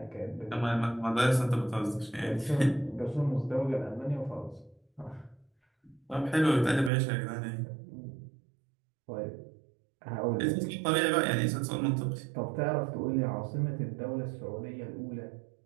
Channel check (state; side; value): drops out; left; at 6.9 s